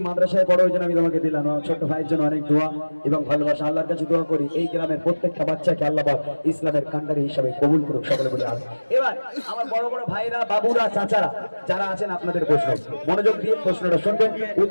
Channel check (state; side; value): inverted; both; correlation -1.00